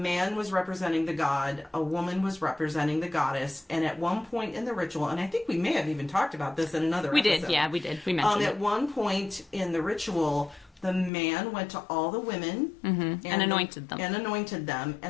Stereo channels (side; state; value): right; drops out; at 11.1 s